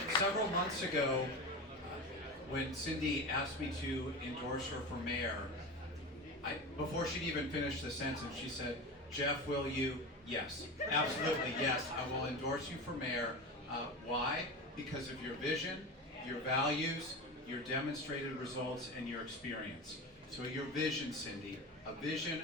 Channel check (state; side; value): normal; both; correlation 0.25